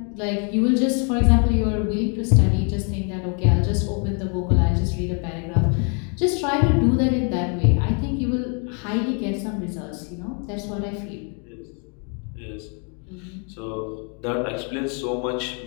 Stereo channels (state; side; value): quieter; right; 38.6 dB